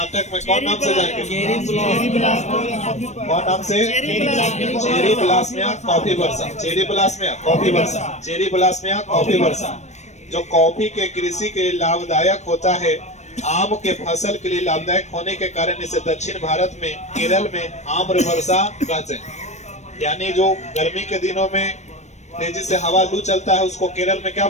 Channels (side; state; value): right; late; 0.34 ms